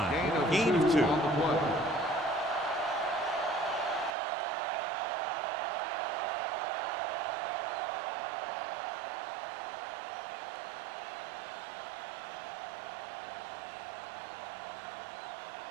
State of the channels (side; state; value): left; drops out; at 4.1 s